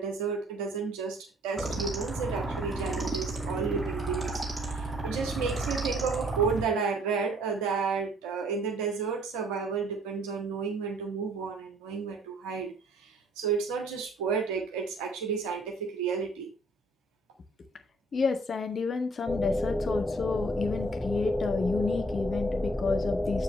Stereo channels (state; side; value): normal; both; correlation 0.60